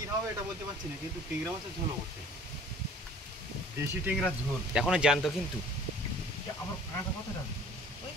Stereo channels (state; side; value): normal; both; correlation 0.50